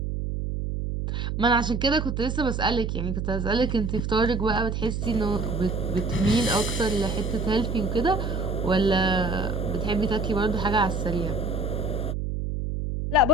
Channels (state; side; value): noise; right; hum, 2 dB below the sound